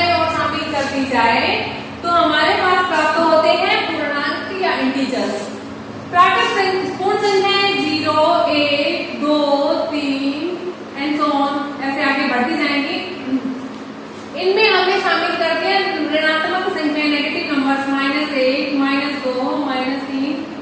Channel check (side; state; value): both; identical; correlation 1.00